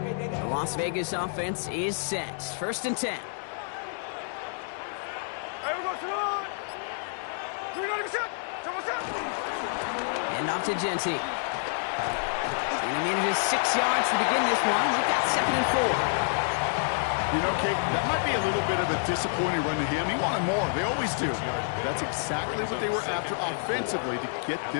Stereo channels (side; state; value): right; silent; digital silence